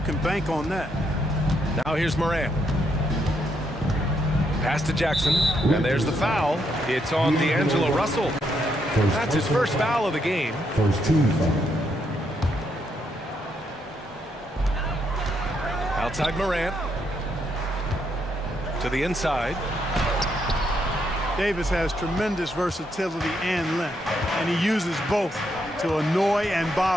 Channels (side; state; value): both; normal; correlation 0.77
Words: can bank on that. Now here's Morant. Pass to Jackson, and there's the foul. It's on D'Angelo Russell. That's his first foul of the game. First team foul. Outside Morant. To the inside. Davis has tremendous versatility and length, and he uses both to annoy and